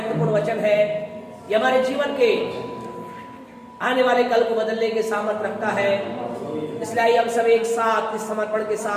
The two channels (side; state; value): both; identical; correlation 1.00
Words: वचन है। ये हमारे जीवन के आने वाले कल को बदलने के सामर्थ्य रखता है। इसलिए आइए हम सब एक साथ इस समर्पण के